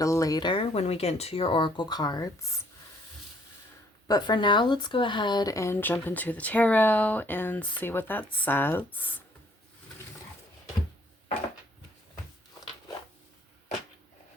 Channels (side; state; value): both; normal; correlation 0.63